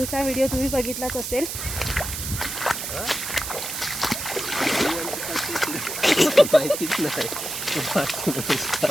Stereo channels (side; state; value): right; noise; hiss, 5 dB below the sound